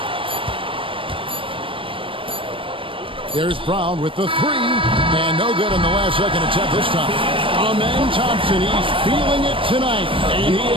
There's Brown with the 3, and no good in the last second attempt this time. Amen Thompson, he's feeling it tonight, and he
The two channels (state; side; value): late; left; 0.25 ms